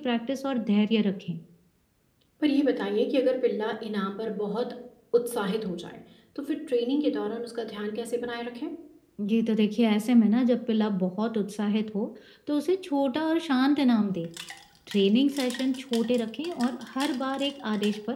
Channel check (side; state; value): both; identical; correlation 1.00